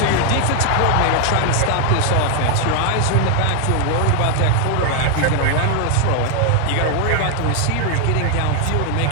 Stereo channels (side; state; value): both; different; correlation 0.01